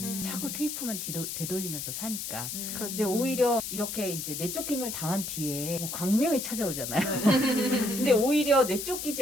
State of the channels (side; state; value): left; noise; hiss, 5 dB below the sound